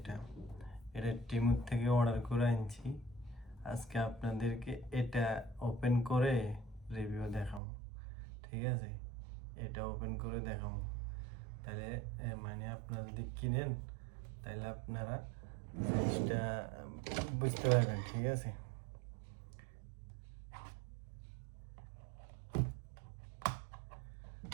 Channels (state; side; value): drops out; left; at 7.6 s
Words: এটা টিমুর থেকে অর্ডার করে আনছি। আজকে আপনাদেরকে এটা ওপেন করে রিভিউ দেখাবো, ঠিক আছে? এটা ওপেন করে দেখাবো। তাহলে মানে আপনারা যদি কিনেন তাহলে আপনারা জিনিসটা বুঝতে পারবেন, ঠিক আছে?